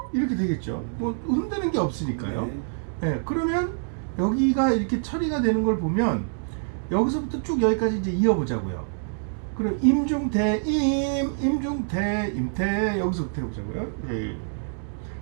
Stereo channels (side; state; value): left; silent; digital silence